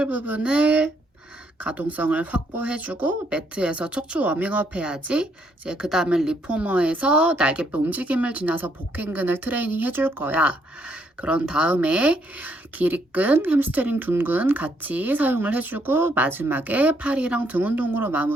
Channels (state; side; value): normal; both; correlation 0.72